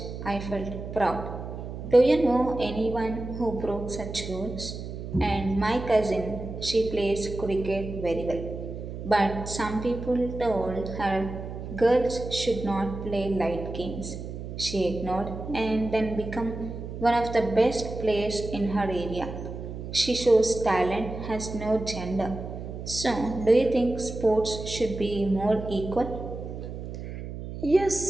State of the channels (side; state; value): right; noise; hum, 8 dB below the sound